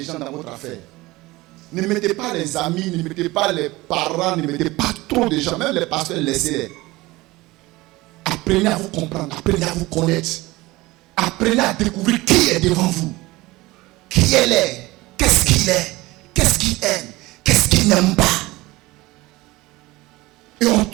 dans votre affaire. Ne mettez pas les amis, ne mettez pas les parents, ne mettez pas trop de gens. Même les pasteurs, laissez-les. Apprenez à vous comprendre, apprenez à vous connaître. Apprenez à découvrir qui est devant vous. Qui elle est, qu'est-ce qu'il est, qu'est-ce qu'il aime, qu'est-ce qu'il n'aime pas. Et on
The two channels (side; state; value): left; quieter; 20.2 dB